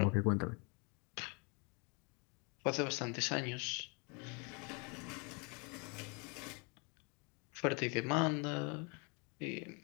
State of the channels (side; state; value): right; quieter; 33.0 dB